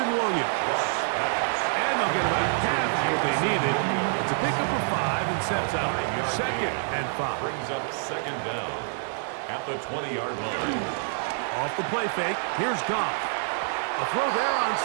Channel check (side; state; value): left; silent; digital silence